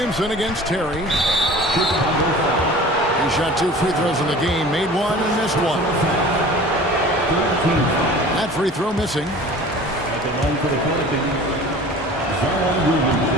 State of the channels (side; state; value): both; normal; correlation 0.42